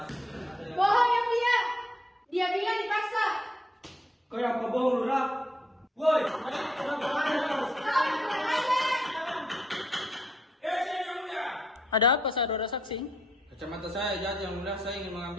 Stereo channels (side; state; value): both; normal; correlation 0.74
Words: ada yang... Bohong yang dia bilang dipaksa. Kayak apa bohong, Lurah? Woi, Yang Mulia. Ada apa saudara saksi? Kacamata saya jatuh, Yang Mulia. Saya ingin